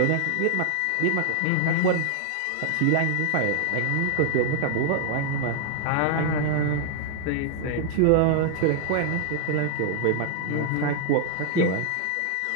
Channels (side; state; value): both; different; correlation 0.00